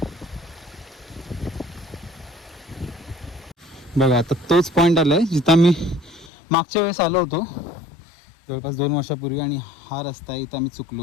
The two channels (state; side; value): drops out; right; at 6.3 s